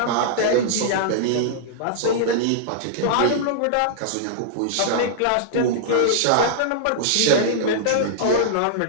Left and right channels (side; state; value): both; different; correlation -0.02